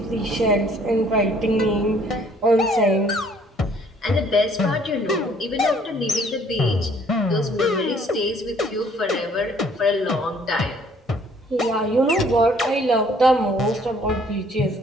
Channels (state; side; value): normal; both; correlation 0.60